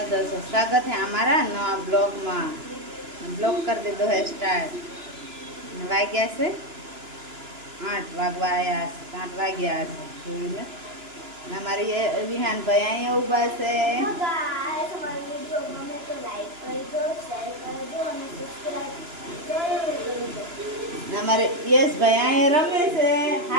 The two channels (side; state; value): left; late; 2.9 ms